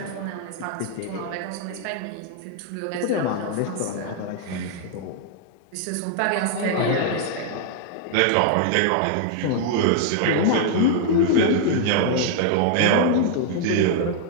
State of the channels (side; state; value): both; different; correlation 0.00